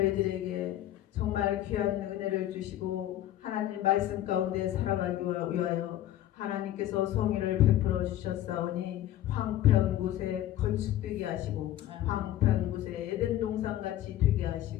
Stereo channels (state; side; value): quieter; right; 13.1 dB